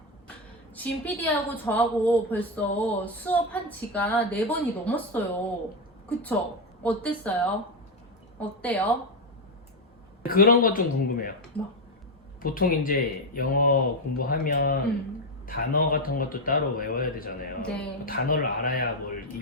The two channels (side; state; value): both; normal; correlation 0.07